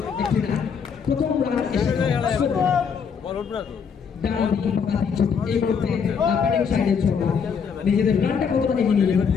একটি রান, প্রথম রান এসে ডান দিকে পাকাতি ছোট এই মুহূর্তে ব্যাটিং সাইডে ছোট নিজেদের রানটা কতটা এগিয়ে নিয়ে যাবে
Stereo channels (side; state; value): right; quieter; 6.5 dB